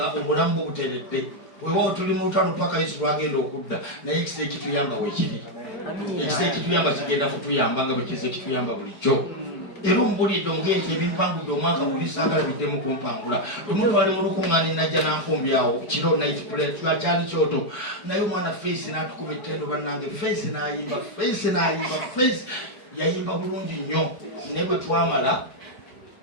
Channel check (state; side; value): late; right; 4.9 ms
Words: obulamu bubuteredde weewaawo tuli mu lutalo paka yesu lwagenda okudda naye ekisa ekituyamba weekiri ekisa ekituyamba kigenda kutuyamba nga bwekiza ekituyamba bulijjo era omubulidde omugenti ebimpangudde omwaka guli saagala biddemu kumpangula omuntu ali mu lukuŋŋaani najja nanfumbyawo kiro night plate kyali kyoto naye omwana face n'atukuba ettendo bannange face n'ayimba face yayimba bulungi nnyo naye bwe twamala